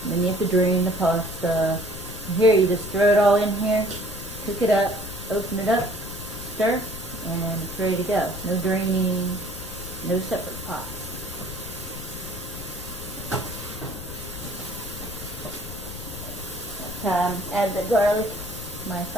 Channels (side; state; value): left; noise; rumble, 11 dB below the sound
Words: And then you have to drain the pasta. Here, you just throw it all in here, cook it up, open it up, stir, and it's ready to go. No draining, no separate pots. Add the garlic, my